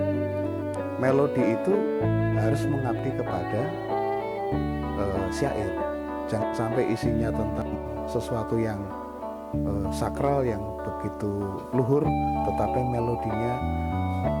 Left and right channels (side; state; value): both; identical; correlation 1.00